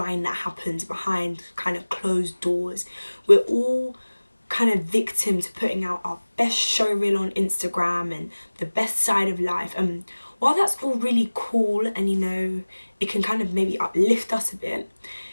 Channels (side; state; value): both; inverted; correlation -1.00